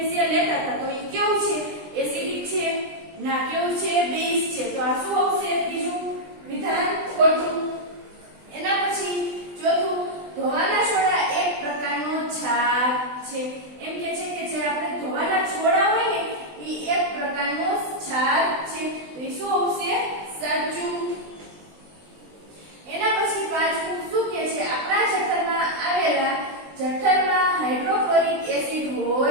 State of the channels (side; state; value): left; late; 20 ms